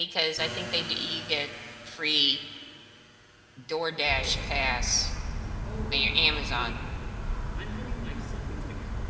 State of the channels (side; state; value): both; identical; correlation 1.00